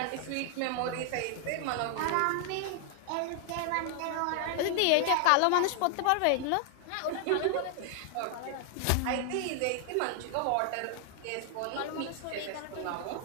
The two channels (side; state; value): both; different; correlation 0.00